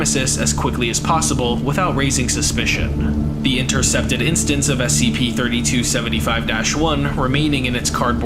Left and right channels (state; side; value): identical; both; correlation 1.00